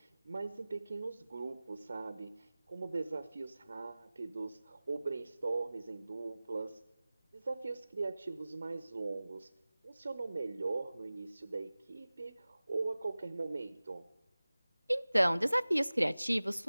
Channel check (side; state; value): both; inverted; correlation -0.98